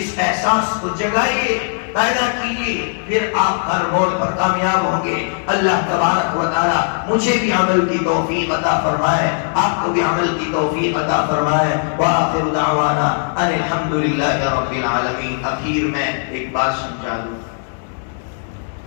احساس کو جگائیے، پیدا کیجیے، پھر آپ ہر موڑ پر کامیاب ہوں گے۔ اللہ تبارک و تعالی مجھے بھی عمل کی توفیق عطا فرمائے، آپ کو بھی عمل کی توفیق عطا فرمائے۔ وآخر دعوانا ان الحمدللہ رب العالمین۔ اخیر میں ایک بات سمجھا دوں،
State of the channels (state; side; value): silent; right; digital silence